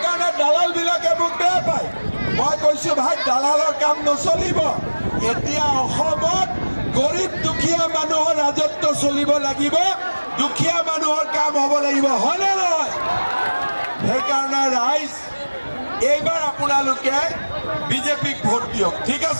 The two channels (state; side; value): inverted; both; correlation -1.00